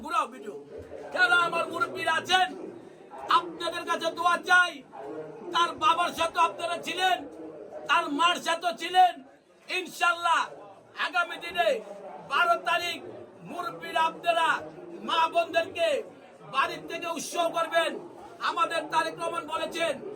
ঘুরাও ভিডিও, যারা আমার মুরব্বীরা আছেন, আপনাদের কাছে দোয়া চাই। তার বাবার সাথে আপনারা ছিলেন, তার মার সাথে ছিলেন। ইনশাল্লাহ আগামী দিনে 12 তারিখ মুরব্বীরা আপনারা মা বোনদেরকে বাড়ির থেকে উৎসব করবেন। আমাদের তারেক রহমান বলেছেন,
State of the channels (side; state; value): both; identical; correlation 1.00